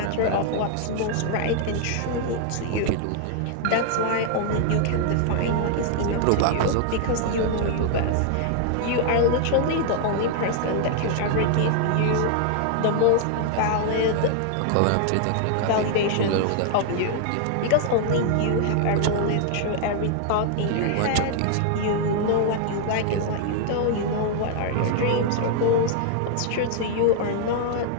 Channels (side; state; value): both; different; correlation 0.00